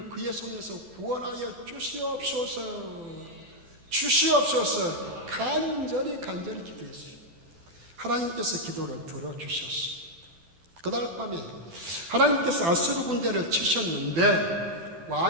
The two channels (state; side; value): late; left; 12 ms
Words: 그의 손에서 구원하여 주시옵소서. 주시옵소서. 간절히 기도했어요. 하나님께서 기도를 들어주셨습니다. 그날 밤에 하나님께서 아수르 군대를 치셨는데